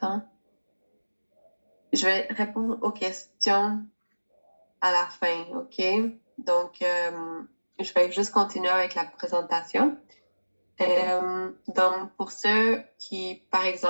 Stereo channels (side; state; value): both; inverted; correlation -1.00